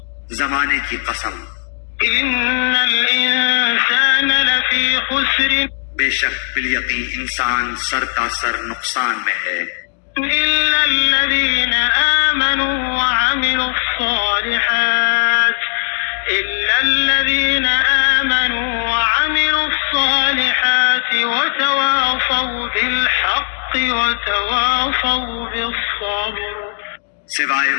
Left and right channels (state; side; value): silent; right; digital silence